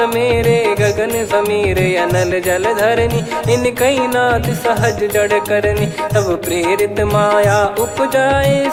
मेरे गगन समीरे अनल जल धरनी इन कई नाथ सहज जड़ करनी तब प्रेरित माया उपजाए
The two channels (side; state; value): both; identical; correlation 1.00